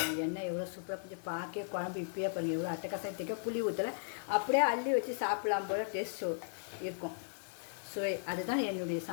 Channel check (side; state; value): right; silent; digital silence